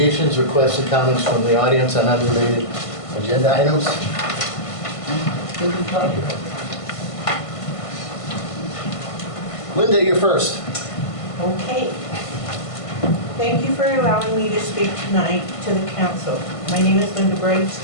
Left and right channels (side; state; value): right; late; 1.5 ms